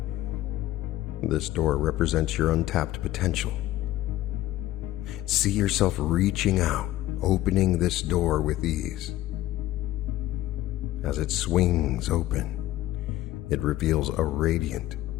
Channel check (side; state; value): right; quieter; 15.1 dB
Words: This door represents your untapped potential. See yourself reaching out, opening this door with ease. As it swings open, It reveals a radiant